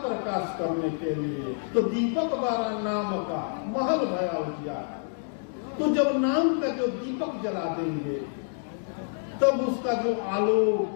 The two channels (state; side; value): silent; right; digital silence